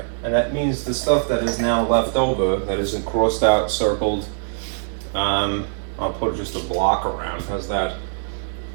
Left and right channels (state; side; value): silent; left; digital silence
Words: and that means the stuff that is now left over, that isn't crossed out, circled, I'll put just a block around. How's that?